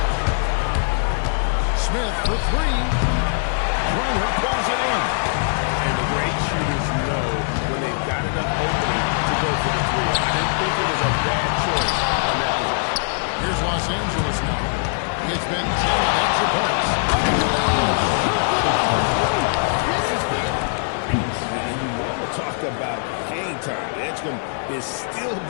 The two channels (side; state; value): right; silent; 64 dB below the other